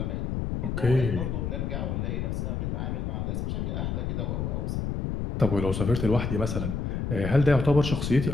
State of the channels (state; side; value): noise; left; rumble, 2 dB below the sound